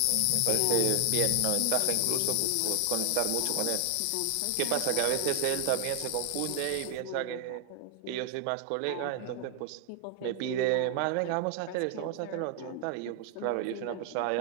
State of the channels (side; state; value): both; different; correlation 0.00